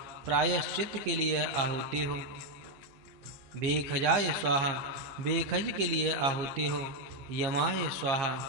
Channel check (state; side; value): late; left; 15 ms